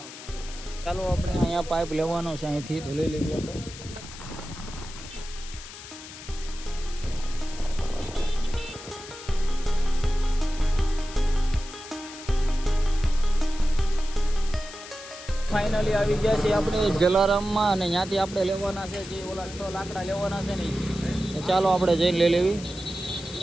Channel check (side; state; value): left; noise; hiss, 14 dB below the sound